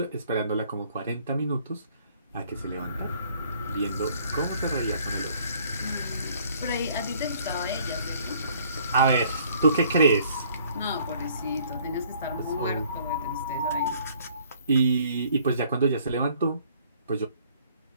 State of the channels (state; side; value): inverted; both; correlation -0.59